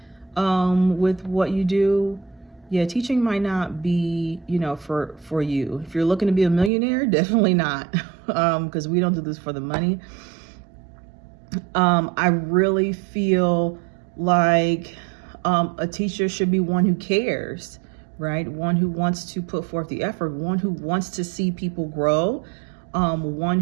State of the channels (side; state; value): left; drops out; at 6.7 s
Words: with what you do, yeah, teaching might not be, for you. If you're looking to be a millionaire, definitely not, because we don't do this for the money. I really feel like a teacher should be one who cares, right? One who wants to put forth the effort, one who wants to see people grow, one